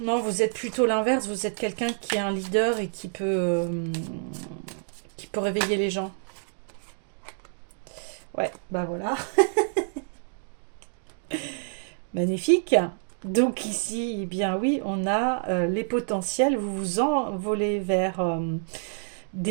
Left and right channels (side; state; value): left; silent; digital silence